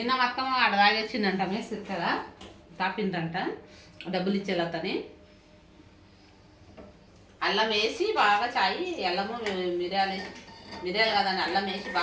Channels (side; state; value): both; identical; correlation 1.00